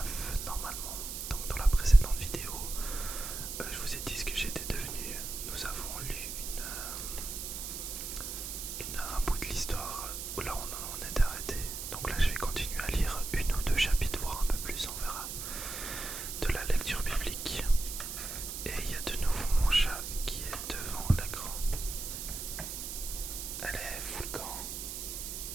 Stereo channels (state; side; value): noise; right; hiss, 6 dB below the sound